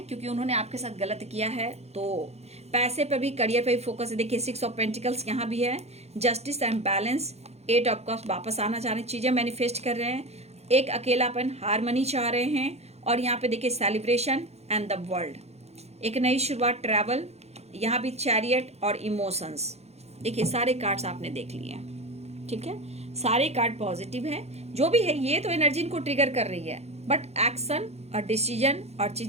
क्योंकि उन्होंने आपके साथ गलत किया है, तो पैसे पे भी, करियर पे भी फोकस है। देखिए 6 ऑफ पेंटिकल्स यहाँ भी है, justice and balance, 8 of cups, वापस आना चाह रहे हैं, चीज़ें मैनिफेस्ट कर रहे हैं, एक अकेलापन, हारमनी चाह रहे हैं, और यहाँ पे देखिए सेलिब्रेशन एंड द वर्ल्ड, एक नई शुरुआत, ट्रैवल, यहाँ भी चैरियट और इमोशंस। देखिए सारे कार्ड्स आपने देख लिए, ठीक है, सारे कार्ड पॉजिटिव है। जो भी है ये तो एनर्जी इनको ट्रिगर कर रही है, बट एक्शन और डिसीजन और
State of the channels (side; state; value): left; late; 0.31 ms